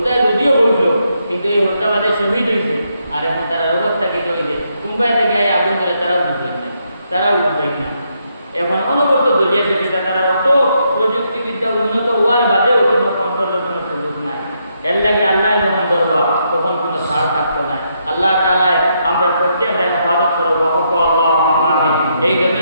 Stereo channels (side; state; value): both; inverted; correlation -0.78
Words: যদিও কইল কিন্তু এই হত্যাবাদে শহীদ হয়েছে, আর এখন তারা অবস্থা কি হয়েছে মুম্বাই থেকে আগুন ধরে তারাও বুঝবেন না, এখন অনবরত দলিয়া সেটা তারা অত প্রযুক্তিবিদ্যা উন্নত হওয়ার বাদেও কোনো কন্ট্রোলের কোনো সুযোগ নাই। এর লাগে আল্লাহ যখন ধরবা তখন কোনো ছাড় থাকতো না। আল্লাহ তাআলা আমরা প্রত্যেকের হেফাজত করবো, আমিন। এই